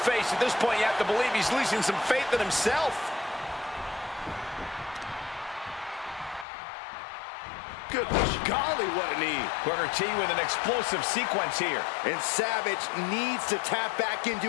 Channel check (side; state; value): right; drops out; at 6.5 s